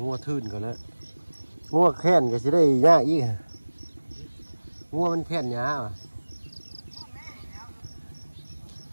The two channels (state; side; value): inverted; both; correlation -1.00